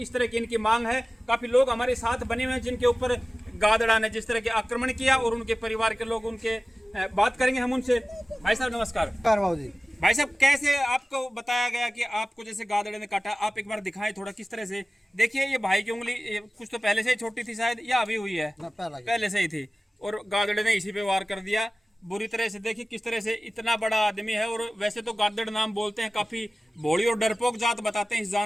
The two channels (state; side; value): normal; both; correlation 0.97